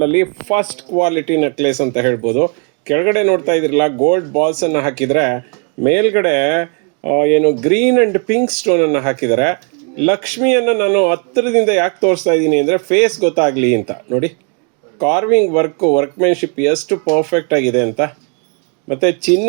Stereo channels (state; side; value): quieter; left; 36.5 dB